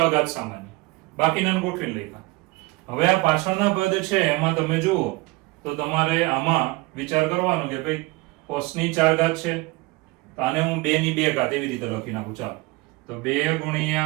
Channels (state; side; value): quieter; left; 23.3 dB